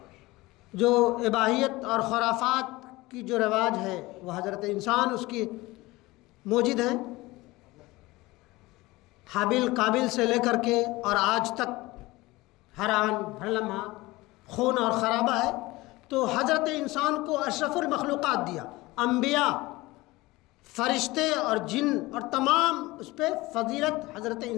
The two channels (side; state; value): right; quieter; 20.4 dB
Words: جو اباحیت اور خرافات کی جو رواج ہے، وہ حضرت انسان اس کی موجود ہیں، حابیل قابل سے لے کر کے اور آج تک ہر آن ہر لمحہ خون اور خرابہ ہے۔ تو حضرت انسان کو اشرف المخلوقات دیا، انبیاء، فرشتے اور جن، اور تمام اس پہ فضیلت حضرت